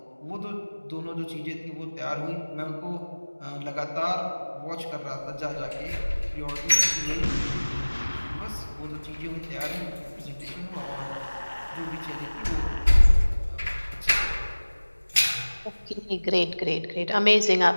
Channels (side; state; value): both; inverted; correlation -1.00